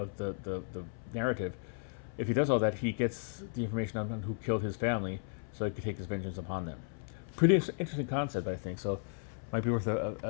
the narrative, if he does all that, he gets the information on who killed his family, so he could take his vengeance upon them. Pretty interesting concept, I think. So, might be worth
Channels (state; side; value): silent; right; 55 dB below the other